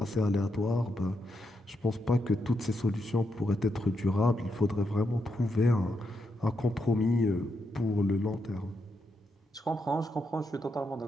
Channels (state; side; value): normal; both; correlation 0.82